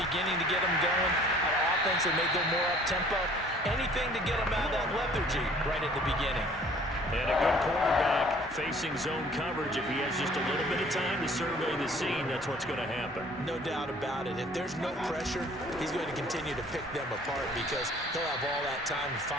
to get them going. On offense, they may go more up-tempo. Anything to get them out of that lethargy right at the beginning. And a good quarterback facing zone coverage. If he has just a little bit of time to survey the scene, that's what's going to happen. No doubt about it. If there's no pressure, he's going to continue to pick them apart because he'll have all that time to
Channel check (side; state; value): both; normal; correlation 0.54